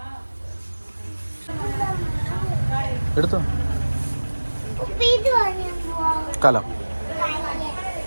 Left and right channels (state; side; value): inverted; both; correlation -1.00